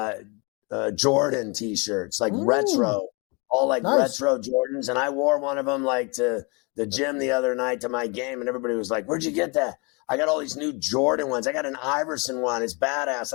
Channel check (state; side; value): quieter; right; 30.6 dB